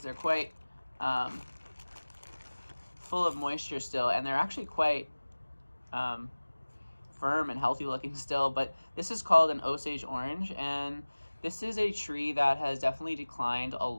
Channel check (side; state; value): both; inverted; correlation -1.00